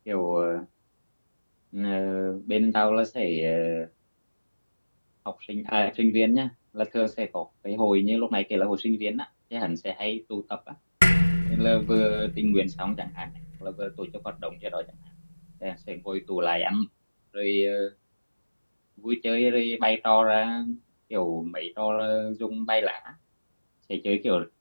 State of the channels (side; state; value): both; inverted; correlation -1.00